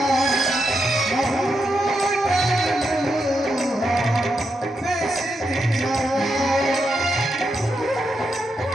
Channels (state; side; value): normal; both; correlation 0.84